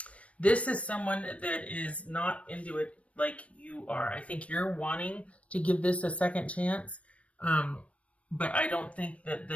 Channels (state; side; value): late; right; 0.064 ms